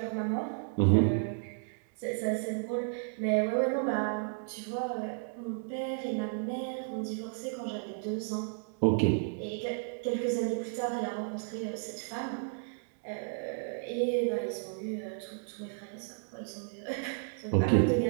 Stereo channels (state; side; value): silent; left; digital silence